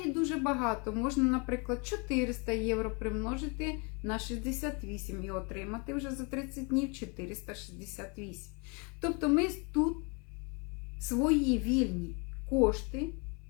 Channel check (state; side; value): quieter; right; 32.8 dB